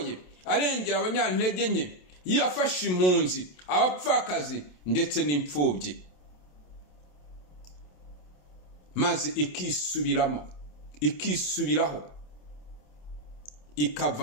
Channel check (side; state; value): right; late; 27 ms